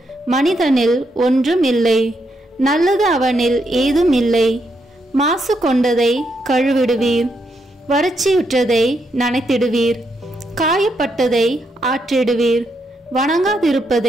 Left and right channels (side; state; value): both; normal; correlation 0.79